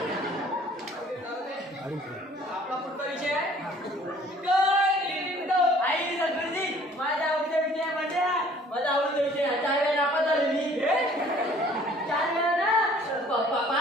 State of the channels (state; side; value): normal; both; correlation 0.55